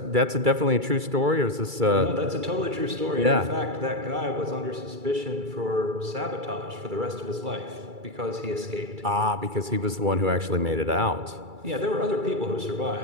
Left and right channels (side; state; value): left; late; 2.3 ms